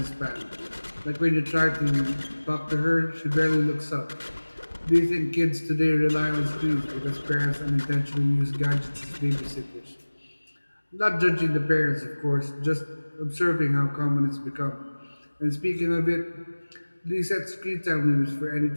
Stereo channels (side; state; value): both; inverted; correlation -1.00